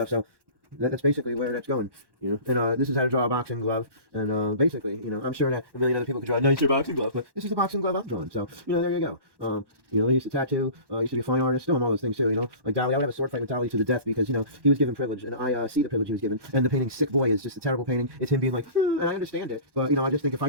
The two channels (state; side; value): late; left; 1.1 ms